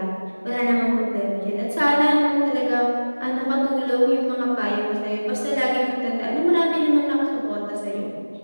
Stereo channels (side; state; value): both; inverted; correlation -1.00